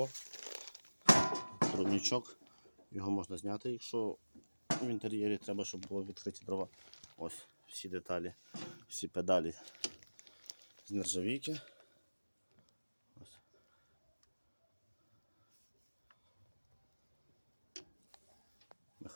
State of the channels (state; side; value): inverted; both; correlation -1.00